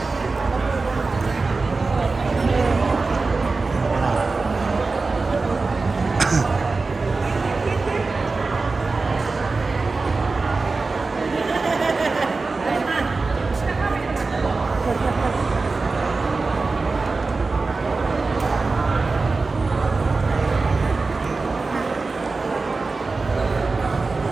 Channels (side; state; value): left; quieter; 3.9 dB